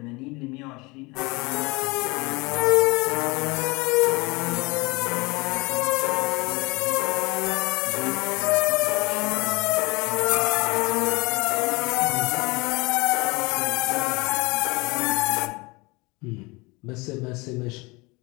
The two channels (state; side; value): quieter; right; 25.3 dB